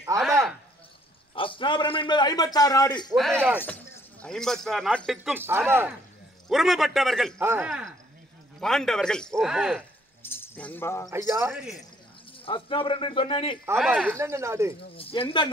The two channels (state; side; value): normal; both; correlation 0.64